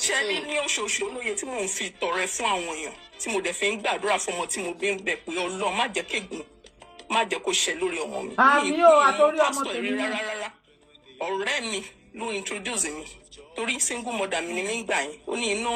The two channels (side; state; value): both; identical; correlation 1.00